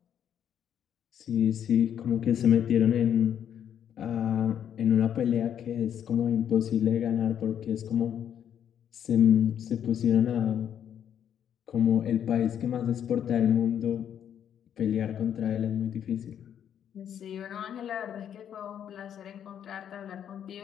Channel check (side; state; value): right; quieter; 9.3 dB